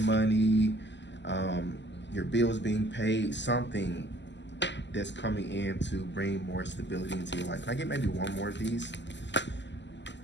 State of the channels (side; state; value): right; late; 0.52 ms